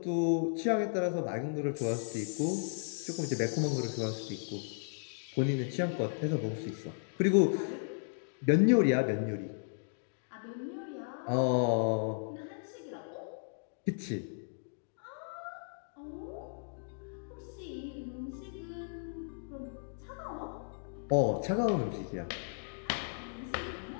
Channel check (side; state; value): right; silent; digital silence